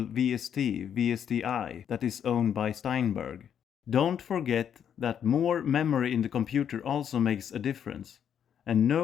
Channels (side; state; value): right; quieter; 8.6 dB